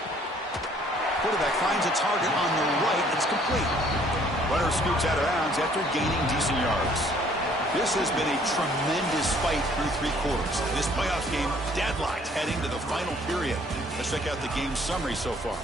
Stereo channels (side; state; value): both; normal; correlation 0.60